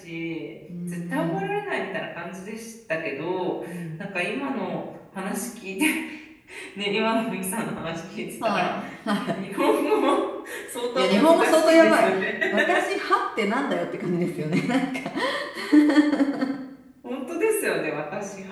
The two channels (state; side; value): identical; both; correlation 1.00